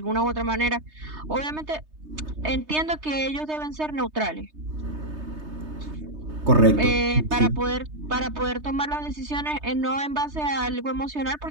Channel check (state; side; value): late; left; 3.3 ms